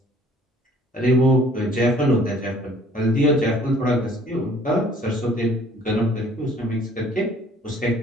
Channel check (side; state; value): both; normal; correlation 0.56